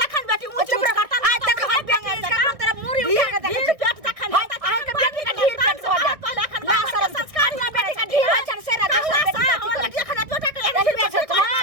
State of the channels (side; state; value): left; late; 1.6 ms